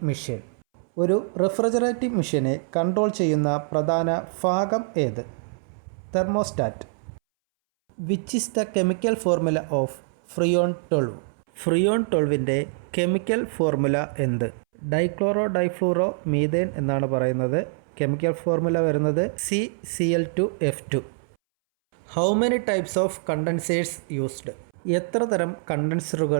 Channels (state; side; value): silent; left; 62 dB below the other